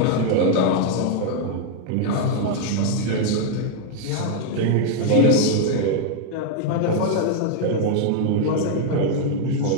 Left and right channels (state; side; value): different; both; correlation 0.00